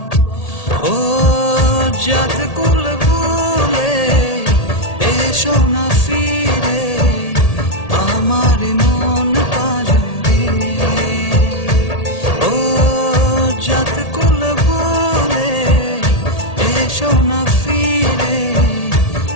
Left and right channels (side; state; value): right; late; 1.8 ms